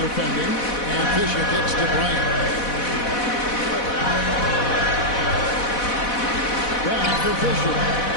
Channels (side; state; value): right; late; 4.1 ms